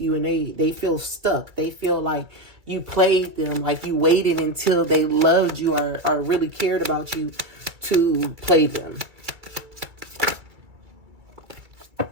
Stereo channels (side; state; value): left; late; 2.3 ms